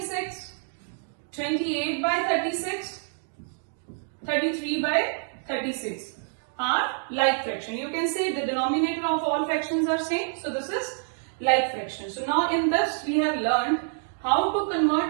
28 by 36, 33 by 36 are like fraction. You can say the denominator of all fractions are same. So this is like fraction. So now in this we have learned how to convert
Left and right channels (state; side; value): silent; left; digital silence